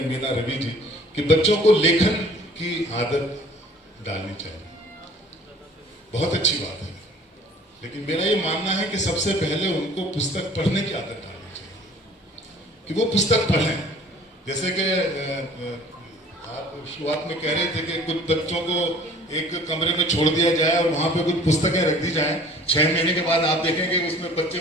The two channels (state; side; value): normal; both; correlation 0.50